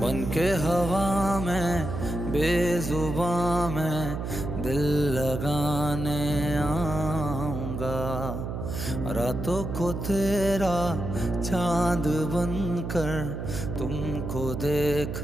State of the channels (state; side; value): noise; right; hum, 5 dB below the sound